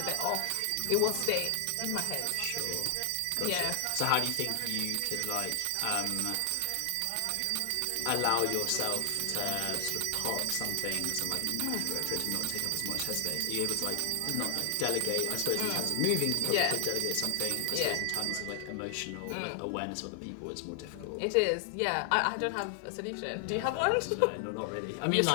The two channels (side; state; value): both; different; correlation 0.00